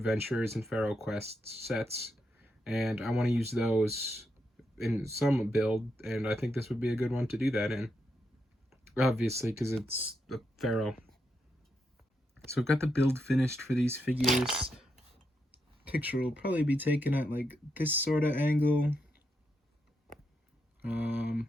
and Pharaoh Quest sets, and I want to use those in some build, and I think this would be a good one to do that in. Obviously, because it's the Pharaoh. So I've got the build finished for these figures. Picture will probably be taken at like this sort of angle.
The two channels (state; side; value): normal; both; correlation 0.83